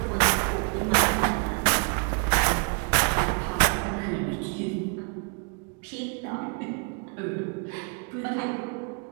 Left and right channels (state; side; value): quieter; left; 38.1 dB